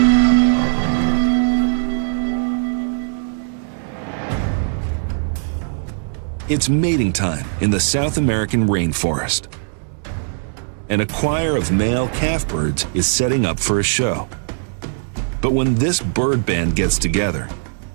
It's mating time in the South American rainforest. And a choir of male calf birds is setting up for a show. But when this bird band gets together,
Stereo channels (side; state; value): left; silent; 66 dB below the other